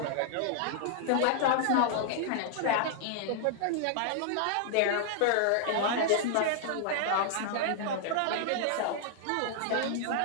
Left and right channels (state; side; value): different; both; correlation -0.01